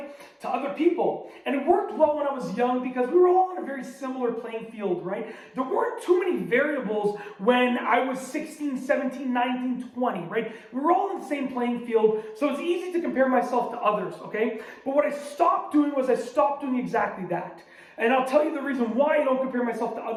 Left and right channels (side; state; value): both; identical; correlation 1.00